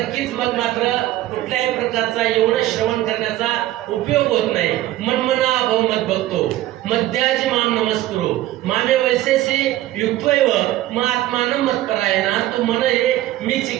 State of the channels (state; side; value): quieter; left; 15.0 dB